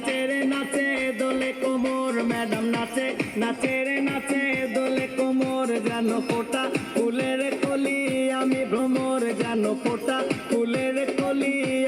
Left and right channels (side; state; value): both; identical; correlation 1.00